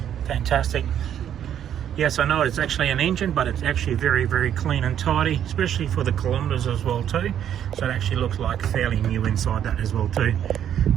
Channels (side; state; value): left; quieter; 9.9 dB